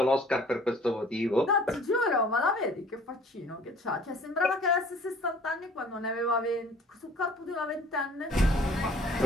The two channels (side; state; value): both; normal; correlation 0.52